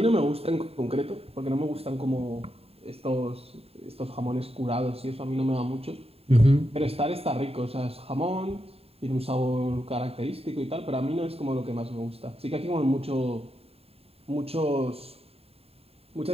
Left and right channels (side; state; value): left; late; 0.29 ms